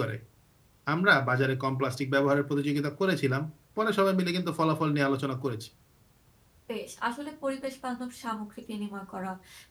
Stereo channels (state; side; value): identical; both; correlation 1.00